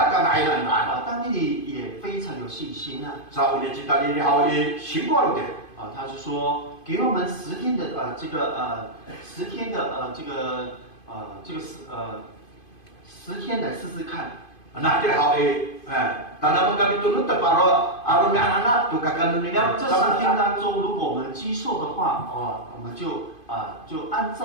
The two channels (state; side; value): late; right; 2.5 ms